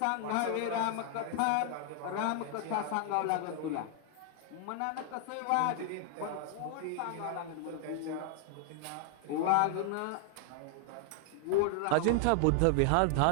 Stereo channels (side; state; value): both; different; correlation 0.00